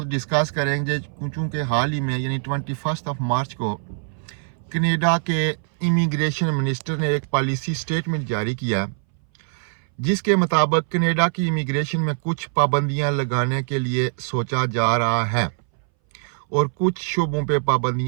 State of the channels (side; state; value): left; silent; 61 dB below the other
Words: डिस्कस करेंगे, चूँकि हाल ही में यानी 21 मार्च को कनाडा के इमिग्रेशन मिनिस्टर ने एक पॉलिसी स्टेटमेंट जारी किया जिसके मुताबिक कनाडा की इमिग्रेशन में कुछ पाबंदियां लगाने के लिए सोचा जा रहा है और कुछ शोबों पे